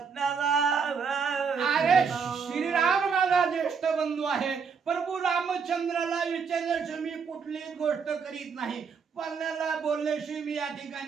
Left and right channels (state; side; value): quieter; left; 5.9 dB